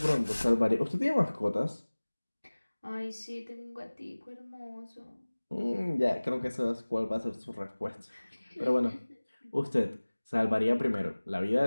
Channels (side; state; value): both; inverted; correlation -1.00